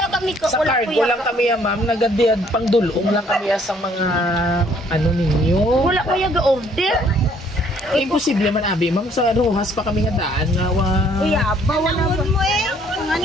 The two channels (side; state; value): both; normal; correlation 0.62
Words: kami ko. Sa cargo lang kami ma'am, nagadiyad pang dulong lang kami sa mga ano ninyo. Wala ko yung order. Imposible man abi ma'am, sa Rojas pa kami nga daan nga Uy, aba, wala mo eh.